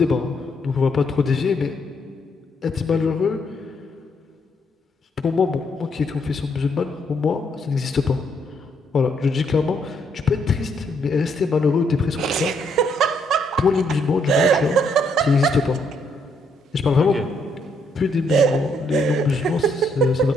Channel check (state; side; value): normal; both; correlation 0.73